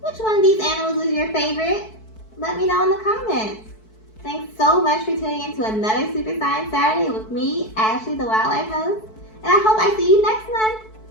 one of these animals was your favorite? Let me know in the comments. Thanks so much for tuning in to another Super Science Saturday with me, Ashley, the wildlife host, and I hope I see you next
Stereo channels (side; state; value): right; late; 4.6 ms